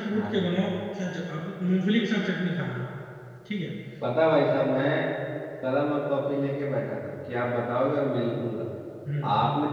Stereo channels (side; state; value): both; identical; correlation 1.00